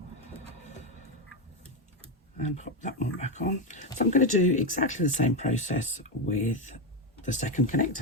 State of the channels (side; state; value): both; normal; correlation 0.09